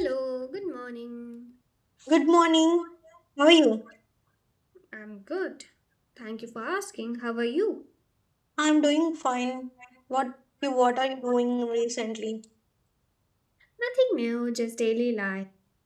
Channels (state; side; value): identical; both; correlation 1.00